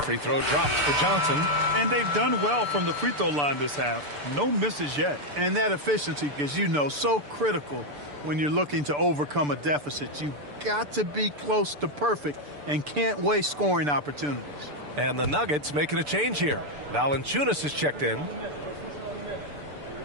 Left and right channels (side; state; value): left; late; 6.8 ms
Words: free throw drops for Johnson. And they've done well from the free throw line this half. No misses yet. And that efficiency, as you know, so critical when you're looking to overcome a deficit. You've got to be close to perfect and can't waste scoring opportunities. And the Nuggets making a change here. Valanciunas is checked in.